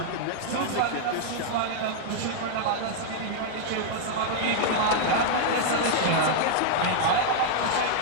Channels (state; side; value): different; both; correlation -0.01